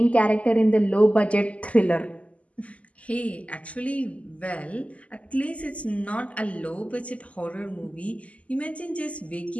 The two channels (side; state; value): right; late; 0.067 ms